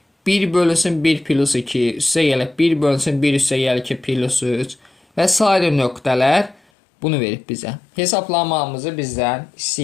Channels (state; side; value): drops out; right; at 6.6 s